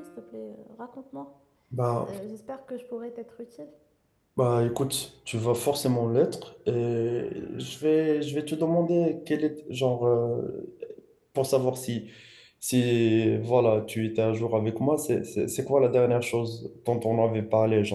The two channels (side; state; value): both; identical; correlation 1.00